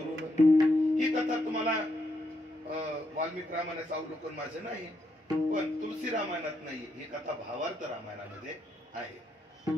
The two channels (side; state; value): both; normal; correlation 0.79